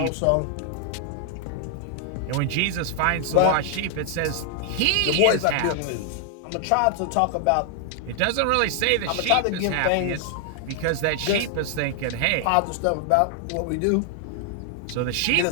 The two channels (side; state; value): both; different; correlation 0.00